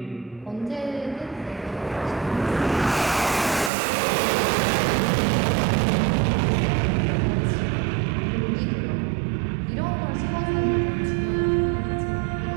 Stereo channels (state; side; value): drops out; left; at 3.7 s